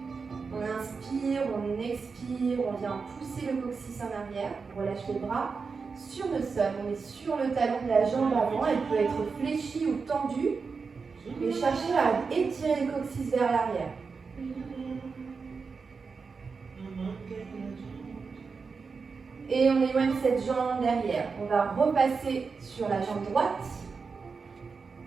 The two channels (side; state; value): left; quieter; 5.0 dB